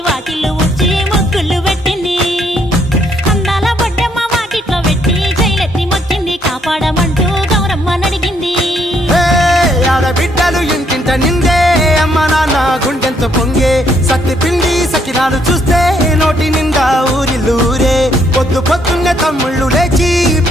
వాకిళ్ళు ఊడ్చి ముగ్గులు పెట్టింది అందాల బొడ్డమ్మ వాకిట్లో పెట్టి జైలెత్తి మొక్కింది కాపాడమంటూ గౌరమ్మ నడిగింది ఆడబిడ్డలు ఇంటింట నిందే అమ్మ నాన్న గుండెంతో పొంగే సత్తి పిండి సకినాలు చూస్తే నోటి నిండా ఊరిల్లూరే పొద్దు పొద్దున్నే తమ్ముళ్ళు లేచి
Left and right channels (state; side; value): normal; both; correlation 0.70